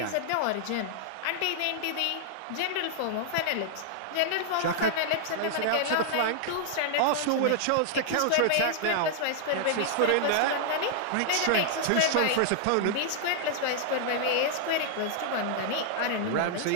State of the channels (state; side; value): different; both; correlation -0.01